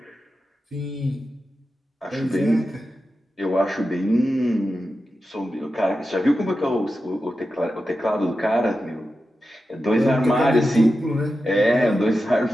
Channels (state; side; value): normal; both; correlation 0.91